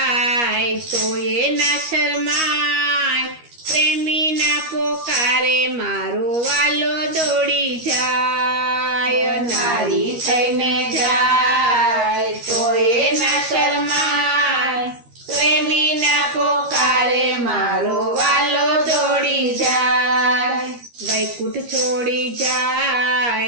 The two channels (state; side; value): late; left; 13 ms